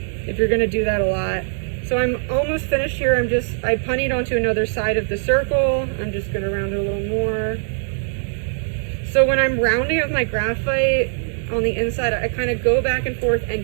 if you're gonna do that a lot. So I'm almost finished here. I punnied onto another side of the circle. I'm just gonna round it a little more. So when I'm rounding with my graphite on the inside, I kind of go back and forth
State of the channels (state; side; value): silent; left; digital silence